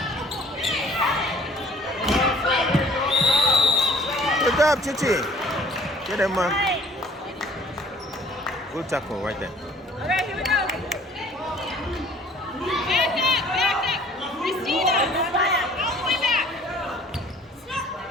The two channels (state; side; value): normal; both; correlation 0.52